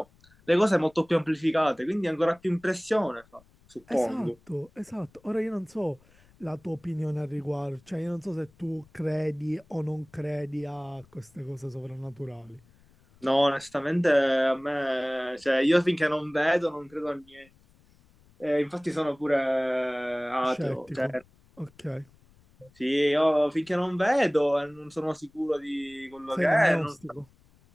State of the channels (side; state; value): left; noise; rumble, 30 dB below the sound